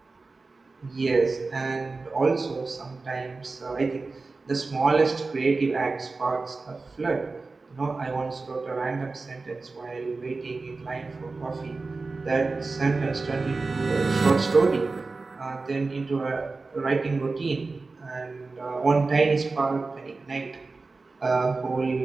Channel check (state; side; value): quieter; left; 3.8 dB